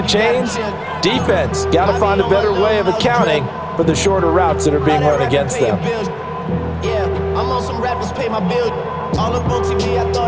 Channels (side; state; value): both; identical; correlation 1.00